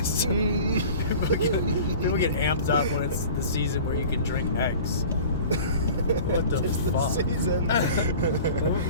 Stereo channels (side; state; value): both; inverted; correlation -0.41